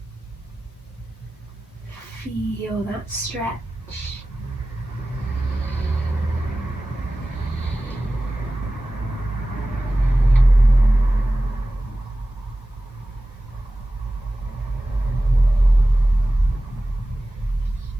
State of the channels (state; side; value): normal; both; correlation 0.96